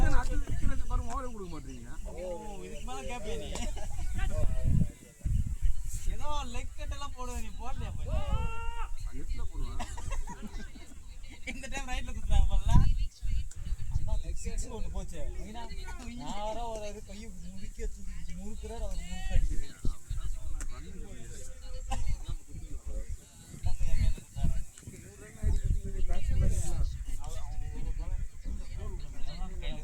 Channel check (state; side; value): identical; both; correlation 1.00